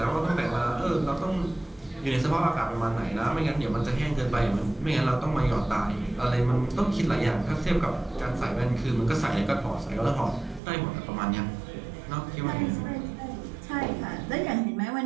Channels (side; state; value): left; drops out; at 10.6 s